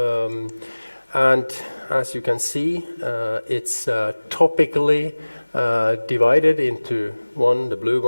And as you can see, it's topically divided into one, the blue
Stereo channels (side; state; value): both; inverted; correlation -1.00